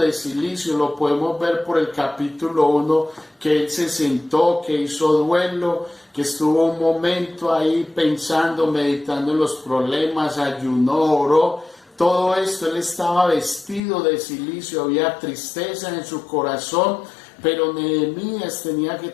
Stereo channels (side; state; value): right; drops out; at 13.8 s